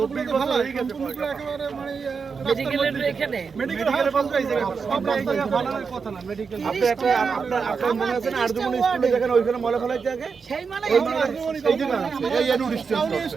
তো ভালো সম্পূর্ণগুলো একেবারে মানে মেডিকেলের এখানে মেডিকেল সব জায়গায় বানানোর কথা না মেডিকেল আপনি একটা আপনার মনে আছে না আরজুমনি স্কুলে যেখানে ওইখানে মলে ফেলাই থাকে সেই মানে এই যে এই এনুড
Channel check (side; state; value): left; quieter; 5.5 dB